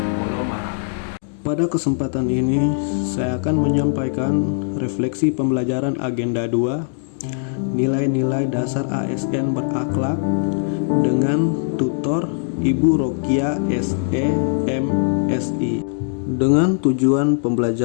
Polomarang. Pada kesempatan ini, saya akan menyampaikan refleksi pembelajaran agenda 2, nilai-nilai dasar ASN berakhlak dengan tutor Ibu Rokia SE MSI. Dengan tujuan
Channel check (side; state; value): right; silent; digital silence